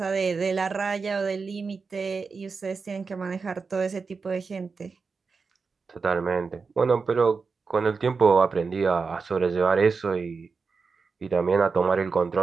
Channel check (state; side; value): quieter; left; 4.8 dB